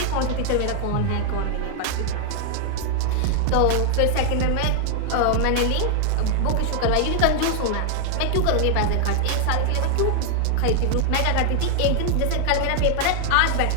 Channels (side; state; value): both; different; correlation 0.00